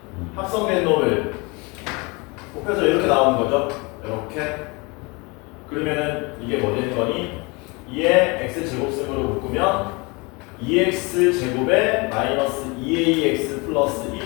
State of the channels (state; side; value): quieter; right; 27.8 dB